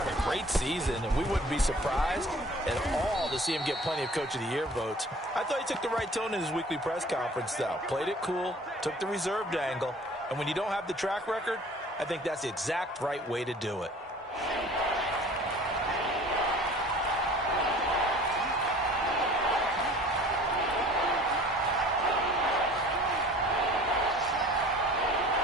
a great season, and we wouldn't be surprised at all to see him get plenty of Coach of the Year votes. I thought he took the right tone in his weekly press conference, though. Played it cool, took the reserved angle, and when you don't have the track record, I think that's the exact right way to do it.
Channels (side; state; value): both; normal; correlation 0.47